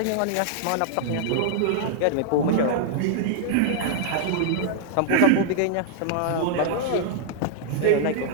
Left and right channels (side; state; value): both; different; correlation -0.01